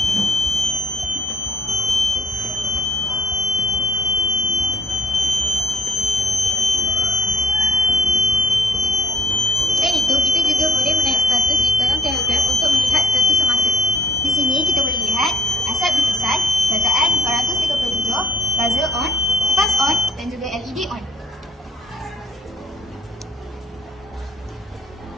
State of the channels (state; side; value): normal; both; correlation 0.66